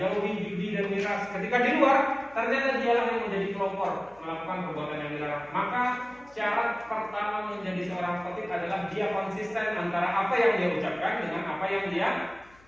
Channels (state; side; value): noise; left; hum, 27 dB below the sound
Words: jauhi judi dan miras. Ketika di luar, ternyata dia yang menjadi pelopor melakukan perbuatan yang dilarang. Maka syarat pertama menjadi seorang khatib adalah dia konsisten antara apa yang dia ucapkan dengan apa yang dia